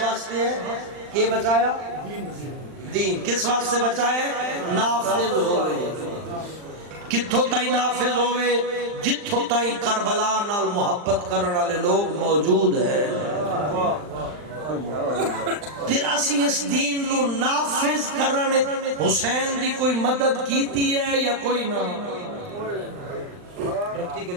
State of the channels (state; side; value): late; left; 39 ms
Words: ہے کہ بچایا دین کس واسطے بچائے نافذ ہوئے کتھوں تائی نافذ ہوئے جتھوں تائی کربلا نال محبت کرنے والے لوگ موجود ہیں پھر اسی اس دین نو نافذ کرنے حسین دی کوئی مدد کیتی ہے یا کوئی نہ